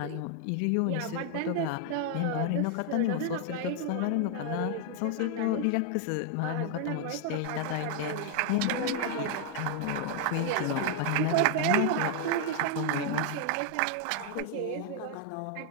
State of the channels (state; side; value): different; both; correlation 0.00